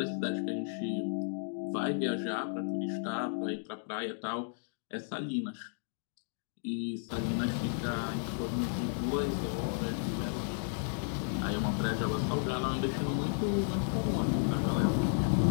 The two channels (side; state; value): right; silent; digital silence